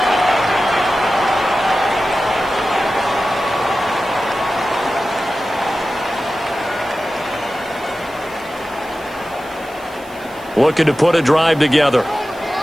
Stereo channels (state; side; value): noise; right; hiss, 24 dB below the sound